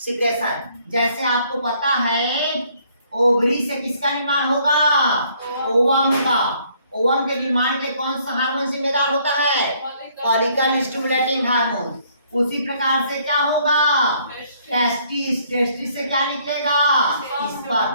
जैसे आपको पता है ओवरी से किसका निर्माण होगा? ओवम का। ओवम के निर्माण के कौन सा हार्मोन जिम्मेदार होता है? Follicle stimulating hormone. उसी प्रकार से क्या होगा? टेस्टिस। टेस्टिस से क्या निकलेगा?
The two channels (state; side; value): inverted; both; correlation -0.64